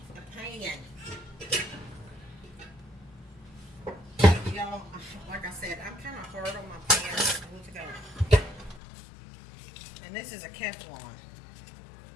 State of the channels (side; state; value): right; drops out; at 8.8 s